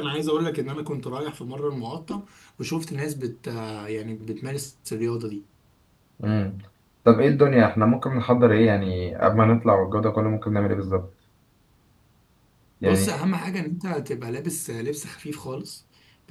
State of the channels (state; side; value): identical; both; correlation 1.00